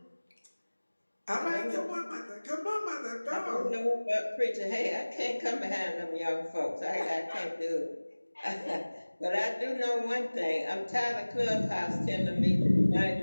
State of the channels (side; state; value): both; inverted; correlation -1.00